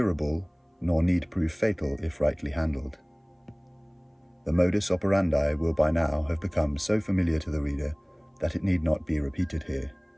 nor need prove fatal if rightly handled. The modus operandi will by now have become so familiar to the reader that it need not be repeated here.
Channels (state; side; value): identical; both; correlation 1.00